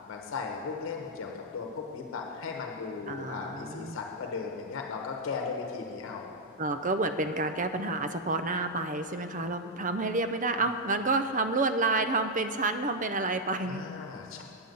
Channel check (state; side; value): normal; both; correlation -0.01